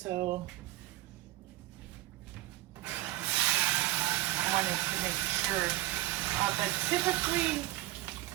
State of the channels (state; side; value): quieter; left; 17.1 dB